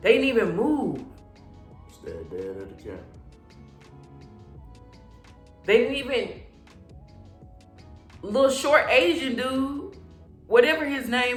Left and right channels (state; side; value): identical; both; correlation 1.00